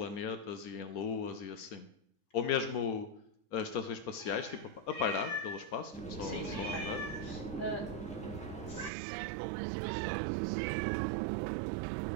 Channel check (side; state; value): left; drops out; at 8.9 s